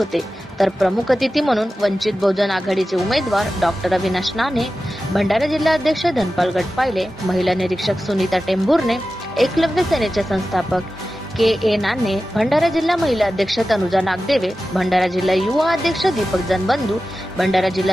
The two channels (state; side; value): normal; both; correlation 0.94